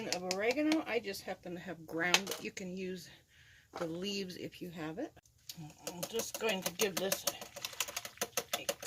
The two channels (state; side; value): identical; both; correlation 1.00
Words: of oregano. I just happen to have ground, but you can use the leaves if you have it. I'm just going to give this a